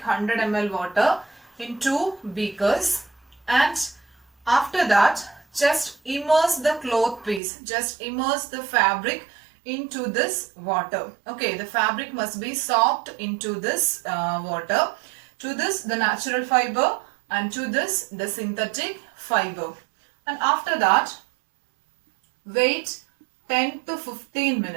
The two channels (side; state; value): left; drops out; at 7.4 s